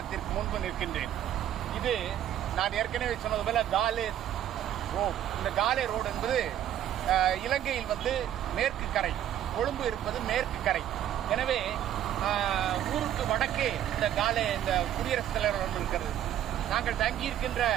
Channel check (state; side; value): quieter; left; 11.2 dB